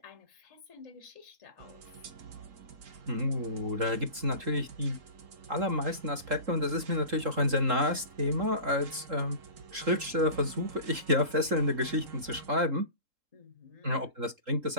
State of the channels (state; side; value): late; left; 3.7 ms